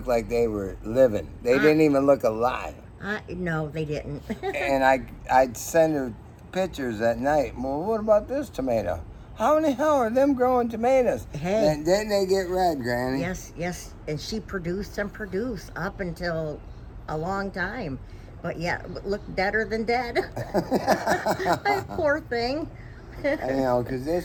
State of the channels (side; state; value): both; identical; correlation 1.00